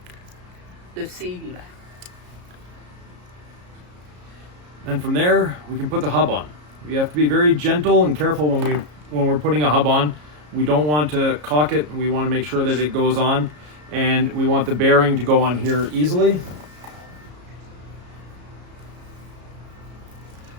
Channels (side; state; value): left; late; 33 ms